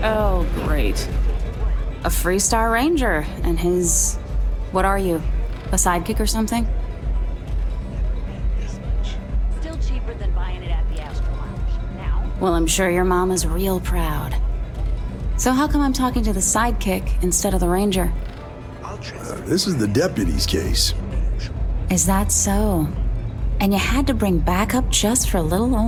Oh, great. A Freestar Ranger and his... What are you? A sidekick or something? Still cheaper than buying it at the Astro Lounge. Now? Well, I'm sure your mom is real proud. So how come I'm talking to the sidekick instead of the Ranger? This is the deputy's case. Is that so? And you had to bring backup just for little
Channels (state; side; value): identical; both; correlation 1.00